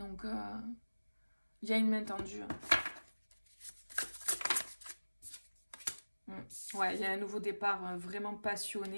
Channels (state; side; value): inverted; both; correlation -1.00